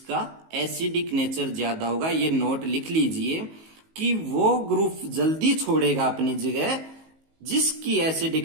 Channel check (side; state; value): left; late; 19 ms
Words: एसिडिक नेचर ज्यादा होगा। ये नोट लिख लीजिए कि वो ग्रुप जल्दी छोड़ेगा अपनी जगह जिसकी